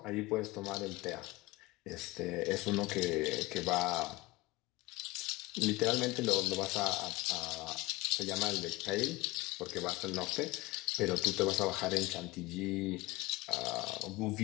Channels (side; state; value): right; quieter; 21.3 dB